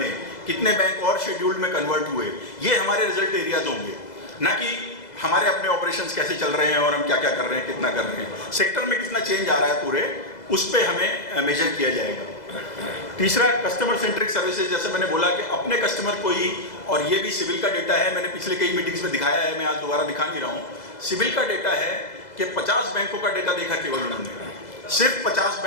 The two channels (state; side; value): late; right; 2.0 ms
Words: कितने बैंक और शेड्यूल्ड में कन्वर्ट हुए। ये हमारे रिजल्ट एरियाज होंगे, ना कि हमारे अपने ऑपरेशंस कैसे चल रहे हैं और हम क्या क्या कर रहे हैं, कितना कर रहे हैं, सेक्टर में कितना चेंज आ रहा है पूरे, उस पर हमें मेजर किया जाएगा। तीसरा, कस्टमर सेंट्रिक सर्विसेज। जैसे मैंने बोला कि अपने कस्टमर को ही, और ये भी सिविल का डेटा है, मैंने पिछले कई मीटिंग्स में दिखाया है, मैं आज दोबारा दिखा नहीं रहा हूँ। सिविल का डेटा है कि 50 बैंकों का डेटा देखा केवल उन्होंने, सिर्फ 50